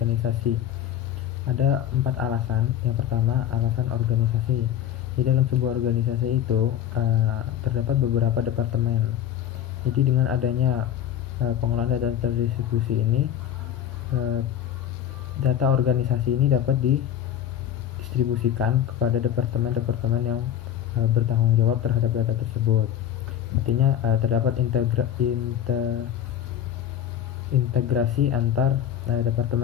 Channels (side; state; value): right; quieter; 10.4 dB